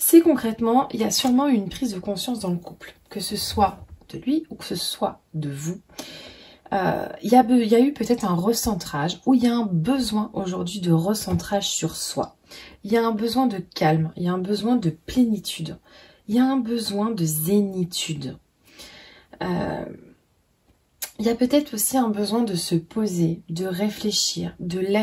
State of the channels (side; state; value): both; identical; correlation 1.00